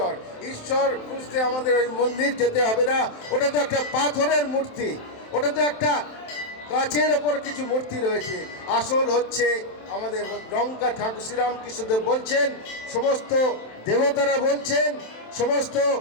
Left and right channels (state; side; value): late; right; 27 ms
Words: ঈশ্বর খুঁজতে আমাদের ওই মন্দির যেতে হবে না, ওটা তো একটা পাথরের মূর্তি, ওটা তো একটা কাচের ওপর কিছু মূর্তি রয়েছে। আসল হচ্ছে আমাদের ডঙ্কা ঠাকুর শ্রীরামকৃষ্ণদেব বলছেন, সমস্ত দেবতারা বলছেন, সমস্ত